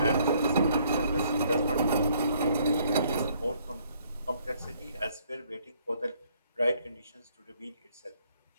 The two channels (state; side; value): inverted; both; correlation -0.65